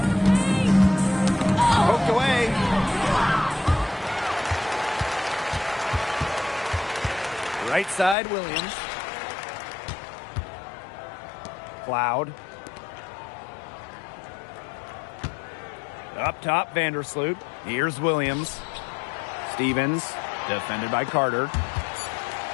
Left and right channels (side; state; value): right; drops out; at 8.2 s